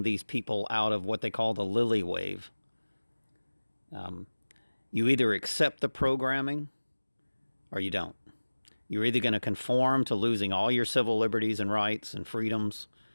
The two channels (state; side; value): inverted; both; correlation -1.00